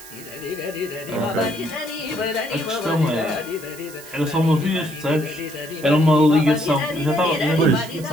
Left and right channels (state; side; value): noise; right; hiss, 17 dB below the sound